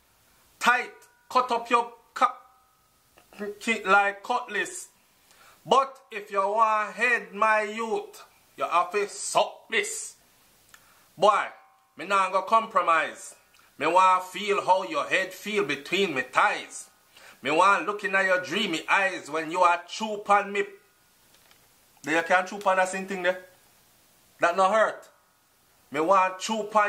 tight, cut up your like cutlass. But if you want head my youth, you have to suck this. Boy, me not gonna compromise. Me want feel how your head feel between me thighs. Me want looking at your dreamy eyes when you are chew on me. There you can't chew on that same thing there. That no hurt. Me want chew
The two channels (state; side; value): identical; both; correlation 1.00